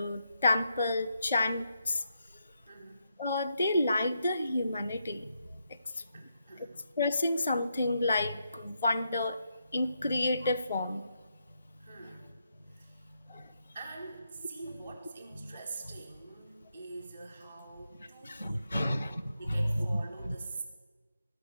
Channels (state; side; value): inverted; both; correlation -0.82